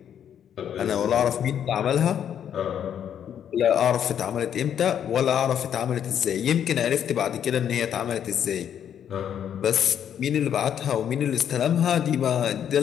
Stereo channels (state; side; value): quieter; right; 9.2 dB